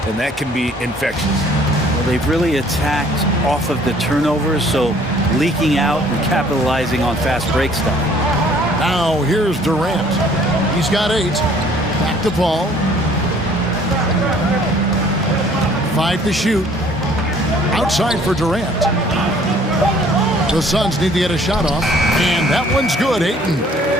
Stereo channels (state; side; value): normal; both; correlation 0.57